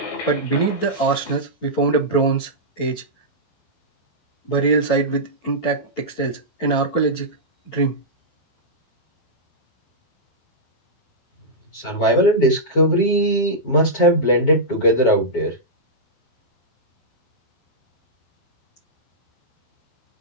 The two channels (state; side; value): late; right; 12 ms